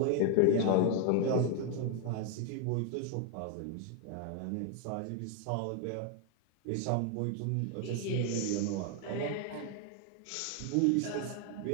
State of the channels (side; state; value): both; different; correlation 0.01